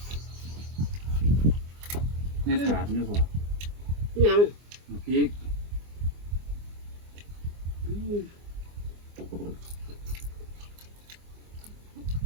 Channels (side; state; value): left; late; 24 ms